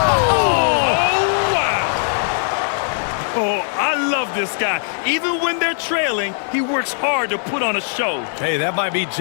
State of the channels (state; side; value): silent; right; digital silence